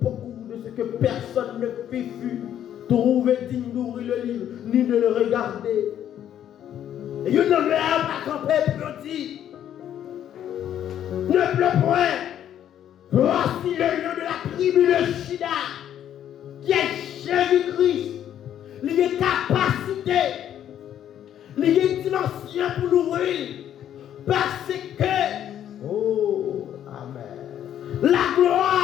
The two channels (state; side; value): quieter; right; 10.5 dB